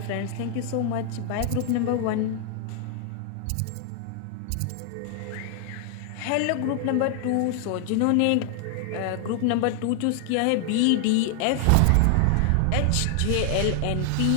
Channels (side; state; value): both; different; correlation 0.00